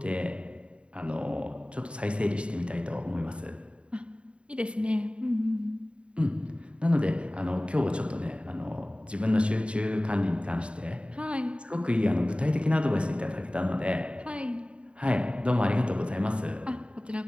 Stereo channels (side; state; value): left; late; 0.058 ms